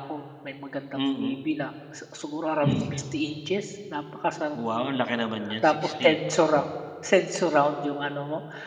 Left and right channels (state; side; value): identical; both; correlation 1.00